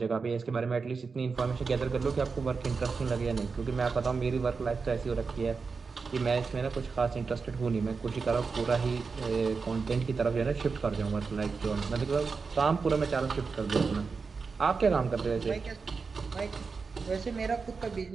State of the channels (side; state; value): left; quieter; 4.8 dB